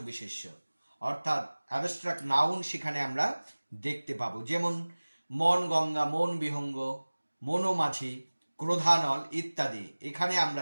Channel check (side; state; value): both; inverted; correlation -1.00